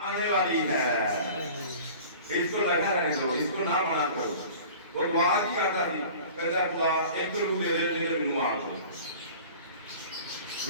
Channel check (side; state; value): both; inverted; correlation -0.42